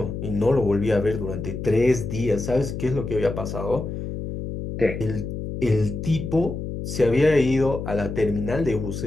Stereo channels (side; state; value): left; noise; hum, 6 dB below the sound